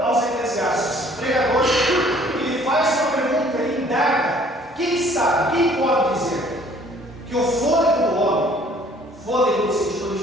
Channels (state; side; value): normal; both; correlation 0.57